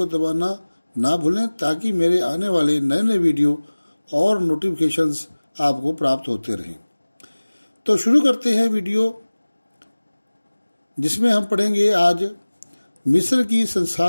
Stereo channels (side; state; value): both; inverted; correlation -1.00